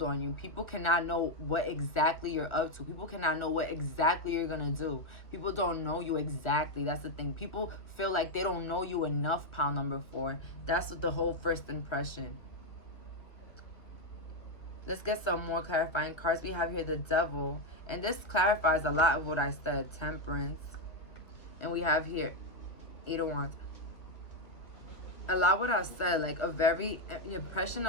on you. People cannot know what exactly you're up to. People cannot know what exactly you're gonna do. People don't know you exactly. That's the thing. People feel like they don't know you enough, pound number 4. That's what the whole first impression. Let's get some more clarifying cards. We have here the Devil. And this clarifies a lot of what I said. Temperance. And we have here 8 of Wands. A lot what I said, like the impression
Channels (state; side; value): late; right; 1.6 ms